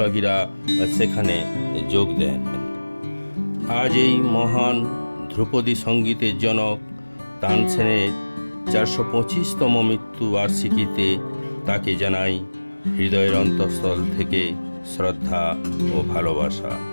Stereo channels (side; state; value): both; inverted; correlation -1.00